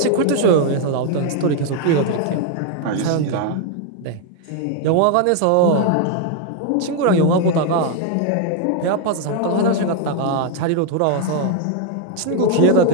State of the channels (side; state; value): both; different; correlation 0.01